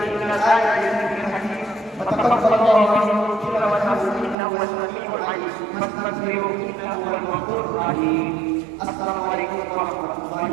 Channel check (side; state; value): left; drops out; at 4.4 s